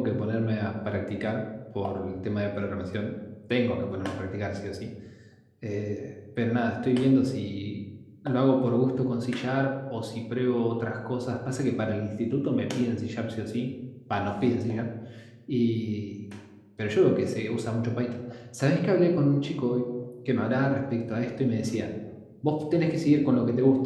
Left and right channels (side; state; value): both; identical; correlation 1.00